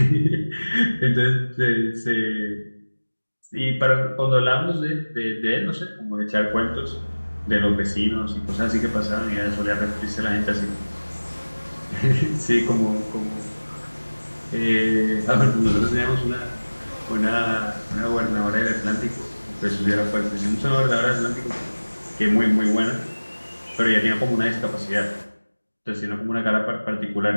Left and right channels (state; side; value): inverted; both; correlation -1.00